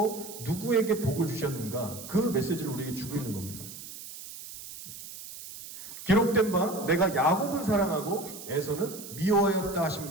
누구에게 복을 주셨는가, 그 메시지를 우리에게 주고 있는 겁니다. 기록된 바 내가 야곱은 사랑하고 에서는 미워하였다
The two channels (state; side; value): noise; right; hiss, 13 dB below the sound